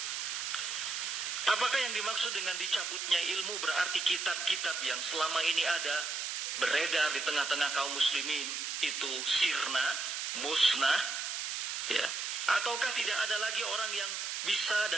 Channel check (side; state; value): right; noise; hiss, 3 dB below the sound